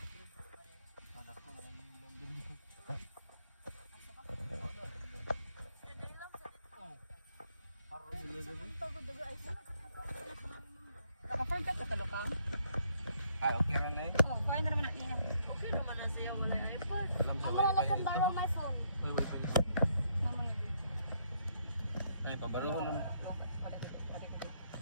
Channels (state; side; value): inverted; both; correlation -0.70